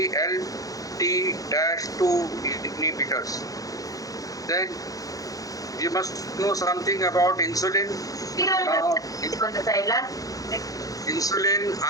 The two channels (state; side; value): late; right; 0.17 ms